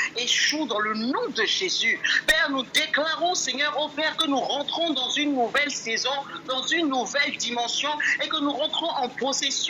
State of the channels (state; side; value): identical; both; correlation 1.00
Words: échouent dans le nom de Jésus. Père, nous déclarons, Seigneur, ô Père, que nous rentrons dans une nouvelle saison, dans une nouvelle dimension et que nous nous rentrons en